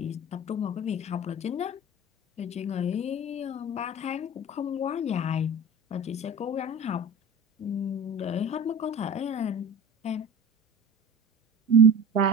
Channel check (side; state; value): both; normal; correlation 0.34